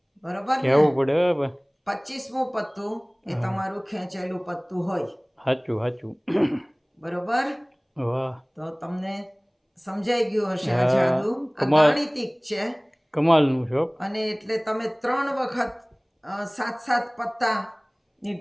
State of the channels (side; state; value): both; identical; correlation 1.00